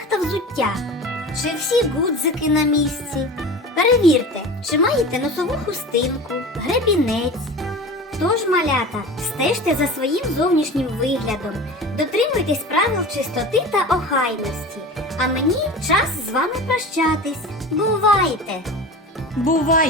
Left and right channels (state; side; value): normal; both; correlation 0.34